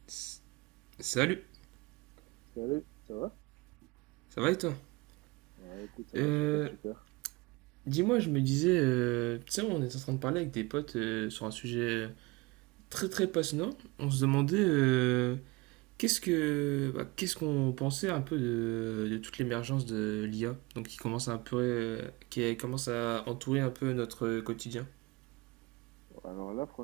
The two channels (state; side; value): quieter; left; 24.3 dB